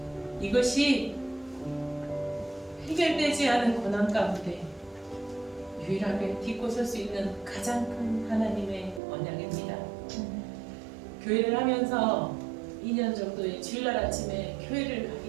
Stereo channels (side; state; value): left; drops out; at 9.0 s